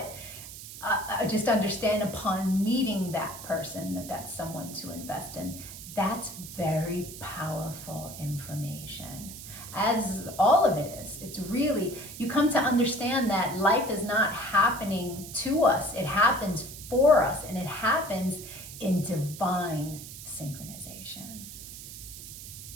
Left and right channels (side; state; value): right; noise; hiss, 12 dB below the sound